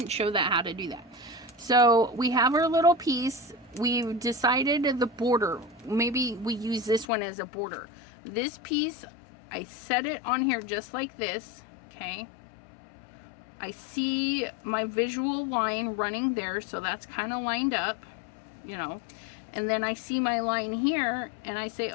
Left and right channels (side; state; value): right; drops out; at 7.1 s